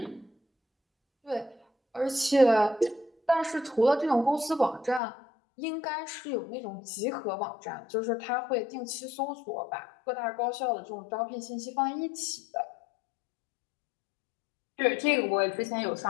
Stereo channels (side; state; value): right; drops out; at 5.0 s